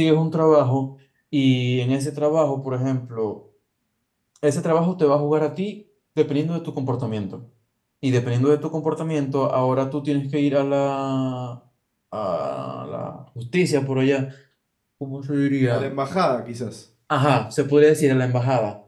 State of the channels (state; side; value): identical; both; correlation 1.00